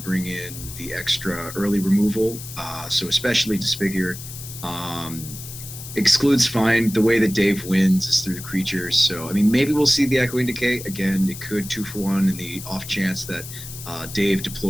in the extra early removal, so especially Disfigure. Exclude's fine. The way that Dave wins is through the creatures. So, I mean, maybe we'll see the Echoing Decay. Again, it could 2-for-1 in the off chance that Dave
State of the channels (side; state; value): left; noise; hiss, 12 dB below the sound